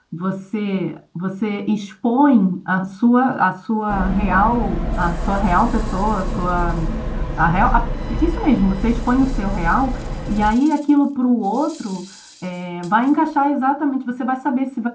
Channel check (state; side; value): identical; both; correlation 1.00